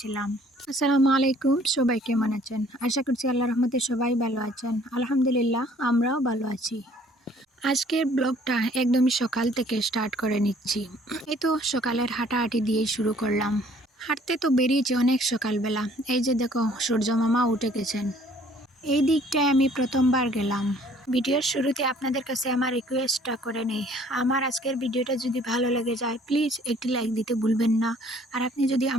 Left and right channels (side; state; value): both; normal; correlation 0.57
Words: আসসালামু আলাইকুম, সবাই কেমন আছেন? আশা করছি আল্লাহ রহমতে সবাই ভালো আছেন। আলহামদুলিল্লাহ, আমরাও ভালো আছি। আজকের ব্লগটা একদমই সকাল থেকে স্টার্ট করে নিচ্ছি। এই তো সকালের হাঁটাহাঁটি দিয়েই শুরু করলাম। হাঁটতে তো বেরিয়েছি অনেক সকালবেলা। এই যে দেখো, সূর্য মামা উঠে গেছেন। এই দিকটায় আমি প্রথমবার গেলাম। ভিডিওর শুরুতে আপনাদের কাছে আমার রিকোয়েস্টটা করে নেই, আমার আজকের ভিডিওটা যদি ভালো লেগে যায় প্লিজ একটি লাইক দিতে ভুলবেন না। আর আপনি যদি